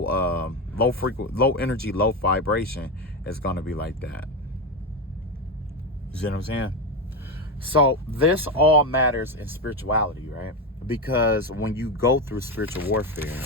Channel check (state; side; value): normal; both; correlation 0.14